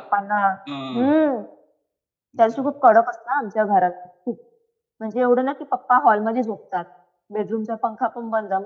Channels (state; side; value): identical; both; correlation 1.00